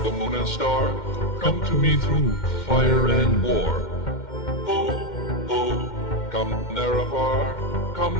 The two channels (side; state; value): right; late; 2.1 ms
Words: moon and star. Come to me through fire and war. Oh, oh, come, Narabar. Come